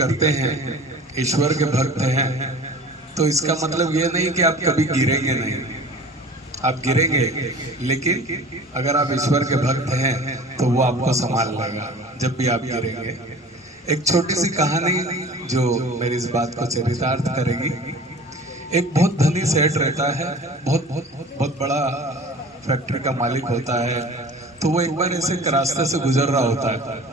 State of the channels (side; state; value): both; normal; correlation 0.42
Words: हैं, ईश्वर के भक्त हैं, तो इसका मतलब ये नहीं कि आप कभी गिरेंगे नहीं। आप गिरेंगे, लेकिन अगर आप ईश्वर के भक्त हैं तो वो आपको संभाल लेगा जब भी आप गिरेंगे। एक छोटी सी कहानी जो मेरी इस बात को चरितार्थ करेगी। एक बहुत धनी सेठ रहता है, बहुत बहुत बहुत बड़ा फैक्ट्री का मालिक होता है। तो वो एक बार ऐसे एक रास्ते से गुजर रहा होता है,